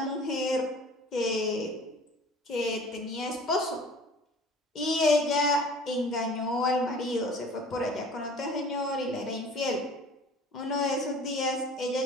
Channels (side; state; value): both; normal; correlation 0.46